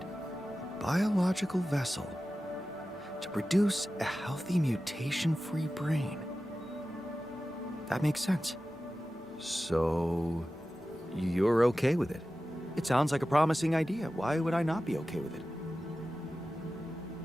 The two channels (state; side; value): normal; both; correlation 0.94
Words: Biological vessel to produce a healthy mutation-free brain. That makes sense. So, you're okay with it? It sounds like a promising idea. Why would I not be okay with it?